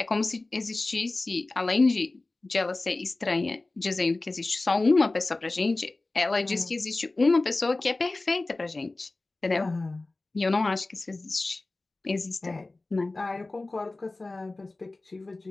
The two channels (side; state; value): right; quieter; 3.1 dB